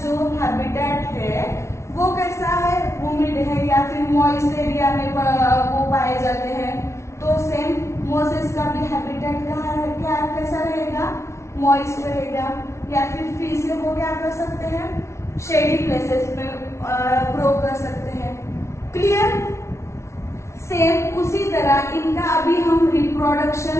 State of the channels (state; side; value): late; right; 0.13 ms